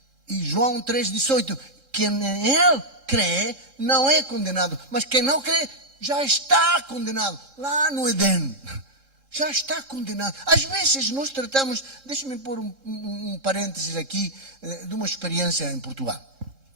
João 3,18, quem nele crê não é condenado, mas quem não crê já está condenado lá no Éden. Já está condenado. Às vezes nós tratamos, deixa-me pôr um parênteses aqui, de uma experiência em Portugal.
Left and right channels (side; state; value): left; late; 3.7 ms